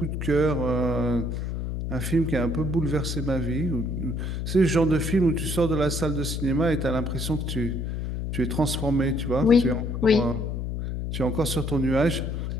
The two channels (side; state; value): left; noise; hum, 3 dB below the sound